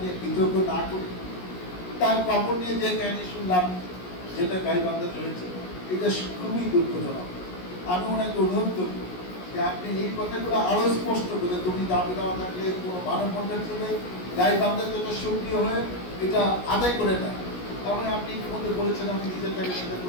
বিতর্ক না করি। তার কাপড় নিয়ে যে কাহিনী শুনলাম, যেটা গাইবান্ধায় হয়েছে, এটা খুবই দুঃখজনক। আমি ওনাকে অনুরোধ করব যে আপনি এই কথাগুলো আরো স্পষ্ট করে, তুমি দাবি দেওয়া থাকলে কোনো মানববন্ধন করলে গাইবান্ধার জন্য সক্রিয় হয়ে এটা আদায় করে নেয়। তারপরে আপনি ইতিমধ্যে বলেছেন আমি নিজের টাকা সেটা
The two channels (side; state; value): right; late; 17 ms